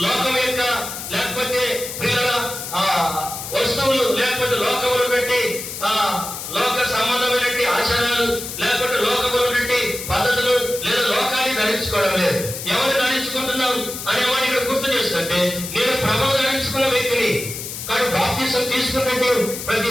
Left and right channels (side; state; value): left; noise; hiss, 8 dB below the sound